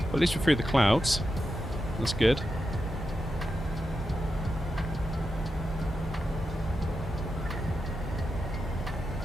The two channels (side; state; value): both; normal; correlation 0.88